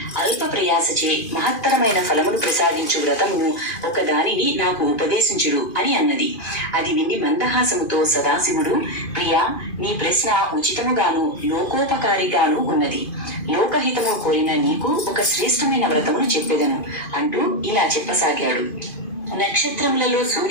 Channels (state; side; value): late; right; 2.5 ms